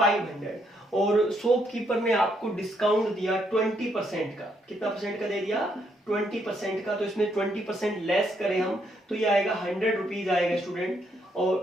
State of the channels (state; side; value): normal; both; correlation 0.74